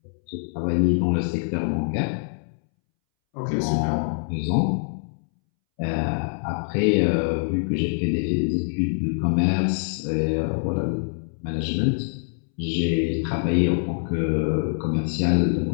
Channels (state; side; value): silent; right; 62 dB below the other